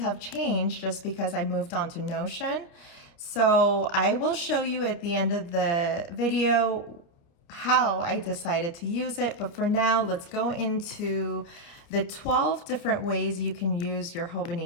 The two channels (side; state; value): right; late; 29 ms